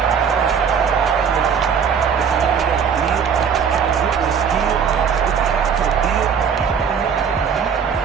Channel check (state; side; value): quieter; left; 6.9 dB